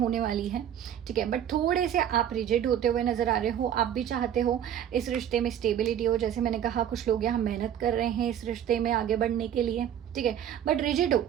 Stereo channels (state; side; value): quieter; left; 10.0 dB